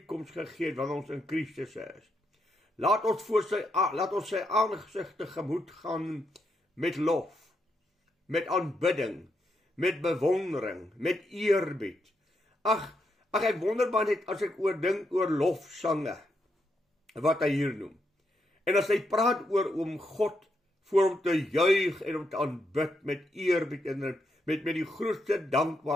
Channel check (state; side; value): normal; both; correlation 0.80